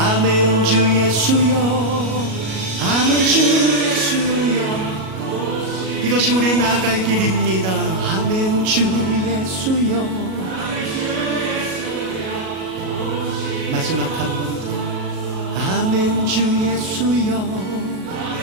주 예수여, 아멘 주 예수여, 이것이 우리 나갈 길입니다. 아멘 주 예수여. 마지막 한 번 더. 아멘 주 예수여,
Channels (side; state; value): left; late; 37 ms